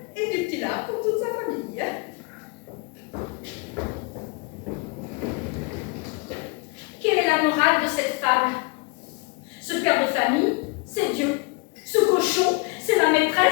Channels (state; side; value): quieter; right; 30.3 dB